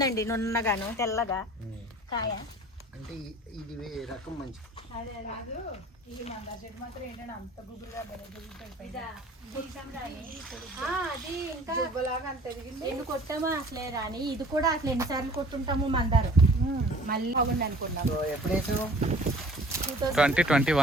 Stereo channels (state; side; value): normal; both; correlation 0.49